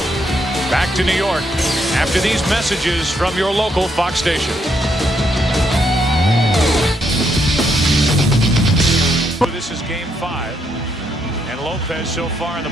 Back to New York after these messages from your local Fox station. This is game 5. And Lopez so far in the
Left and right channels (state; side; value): normal; both; correlation 0.76